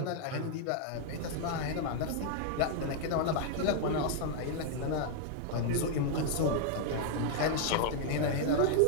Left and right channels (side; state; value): both; different; correlation 0.00